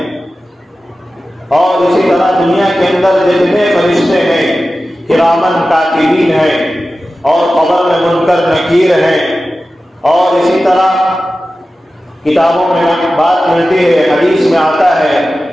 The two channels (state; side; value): normal; both; correlation 0.94